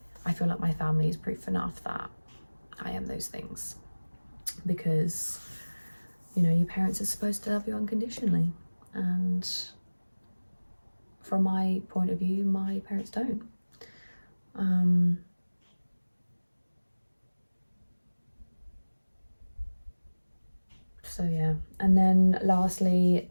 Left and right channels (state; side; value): inverted; both; correlation -1.00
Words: I feel like my family is proof enough that I am those things, because, you know, your parents are supposed to love you unconditionally, and from my point of view, my parents don't. So yeah, and then lastly